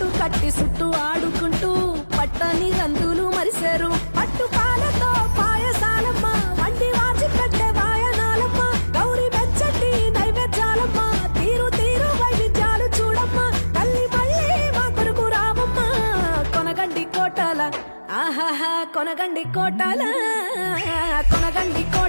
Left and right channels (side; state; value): both; inverted; correlation -1.00